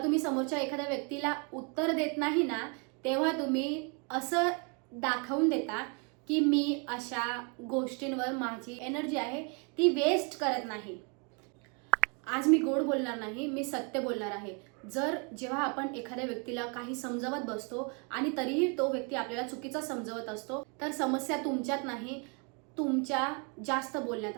तुम्ही समोरच्या एखाद्या व्यक्तीला उत्तर देत नाही ना, तेव्हा तुम्ही असं दाखवून देता की मी अशा गोष्टींवर माझी एनर्जी आहे ती वेस्ट करत नाही. आज मी गोड बोलणार नाही, मी सत्य बोलणार आहे. जेव्हा आपण एखाद्या व्यक्तीला काही समजावत बसतो आणि तरीही तो व्यक्ती आपल्याला चुकीचा समजवत असतो, तर समस्या तुमच्यात नाही, तुमच्या जास्त बोलण्यात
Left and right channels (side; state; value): left; quieter; 35.1 dB